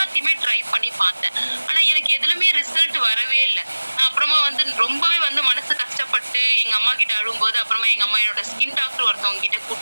ட்ரை பண்ணி பார்த்தேன். ஆனா எனக்கு எதுலுமே ரிசல்ட் வரவே இல்லை. அப்புறமா வந்து ரொம்பவே வந்து மனசு கஷ்டப்பட்டு எங்க அம்மா கிட்ட அழும்போது, அப்புறமா எங்க அம்மா என்னோட ஸ்கின் டாக்டர் ஒருத்தவங்க கிட்ட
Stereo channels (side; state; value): both; inverted; correlation -1.00